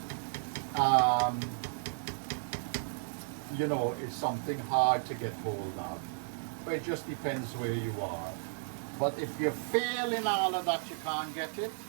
you know, it's something hard to get hold of. But it just depends where you are. But if you're failing all of that, you can't get it,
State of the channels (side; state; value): left; silent; 55 dB below the other